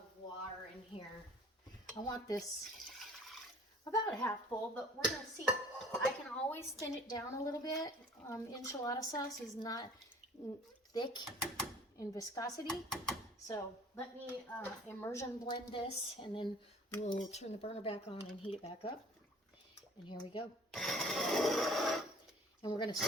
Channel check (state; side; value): normal; both; correlation 0.51